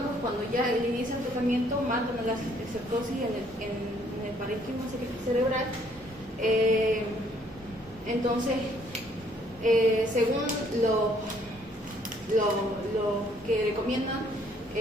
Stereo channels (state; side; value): normal; both; correlation 0.64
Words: cuando ya inicia el tratamiento, matan la cisticercosis en el parénquima cerebral. Entonces, según lo que recomiendan,